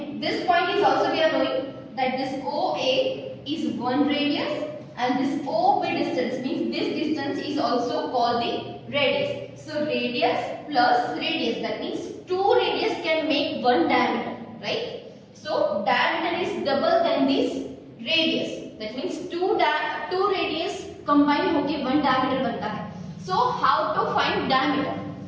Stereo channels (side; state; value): both; identical; correlation 1.00